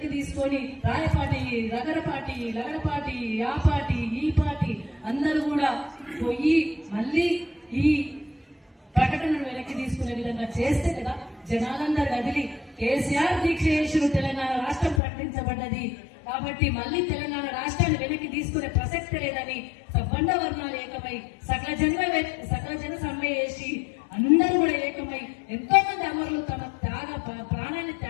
తీసుకొని రాయపాటి, రగరపాటి, లగడపాటి, ఆ పార్టీ ఈ పార్టీ అందరూ కూడా పోయి మళ్ళీ ఈ ప్రకటనను వెనక్కి తీసుకునే విధంగా చేస్తే కదా జనాలందరూ కదిలి కేసీఆర్ దీక్ష చేసిన తెలంగాణ రాష్ట్రం ప్రకటించబడ్డది కాబట్టి మళ్ళీ తెలంగాణ రాష్ట్రాన్ని వెనక్కి తీసుకునే ప్రసక్తి లేదని సబ్బండ వర్ణాలు ఏకమై సకల జన సమ్మె చేసి అందరూ కూడా ఏకమై ఎంతో మంది అమరులు తమ ప్రాణాన్ని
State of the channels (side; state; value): right; drops out; at 15.0 s